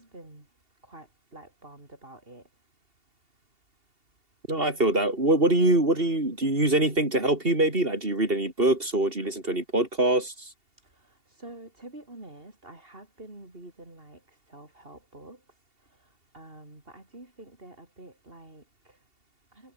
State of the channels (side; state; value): left; late; 2.7 ms